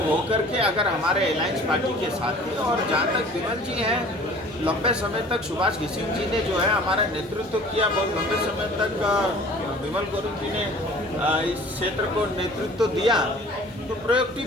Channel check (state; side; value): normal; both; correlation 0.47